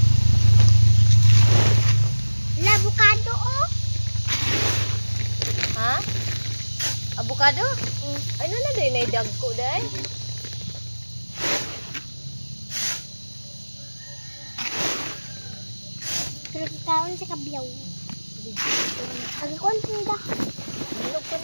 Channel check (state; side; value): inverted; both; correlation -1.00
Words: Avocado oh. Ha? Avocado? Ay na day na dagko day. Pero kaon sa kabyaw. Agkon tinda. Hinog ka